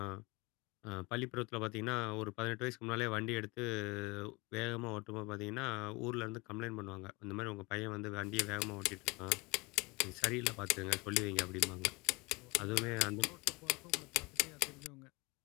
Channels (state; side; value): quieter; right; 26.0 dB